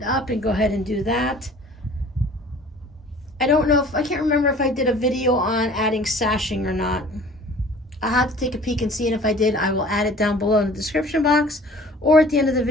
up and go ahead and do that. I don't know if, I can't remember if I did a video on adding sashing or not. I'll have to take a peek and see, and if I did, I will add it down below in the description box or at the end of the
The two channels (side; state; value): both; normal; correlation 0.48